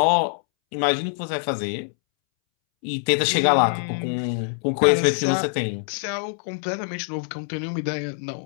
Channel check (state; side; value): silent; right; 63 dB below the other